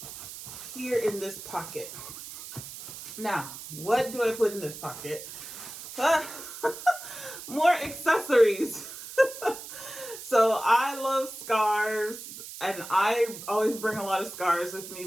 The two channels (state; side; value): noise; right; hiss, 12 dB below the sound